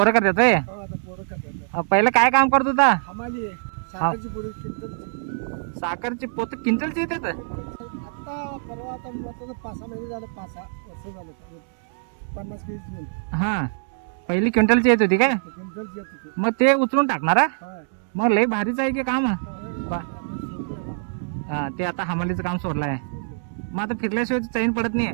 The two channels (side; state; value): left; silent; digital silence